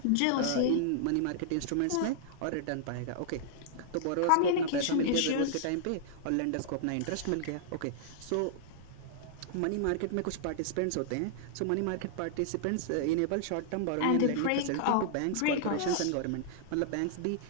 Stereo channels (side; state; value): both; different; correlation -0.01